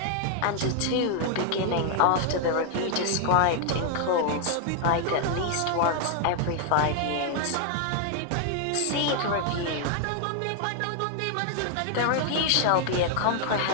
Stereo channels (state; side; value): different; both; correlation 0.00